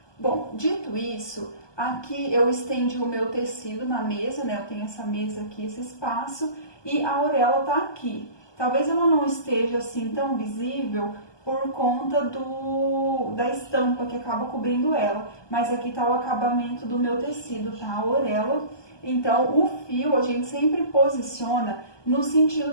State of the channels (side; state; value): right; late; 1.2 ms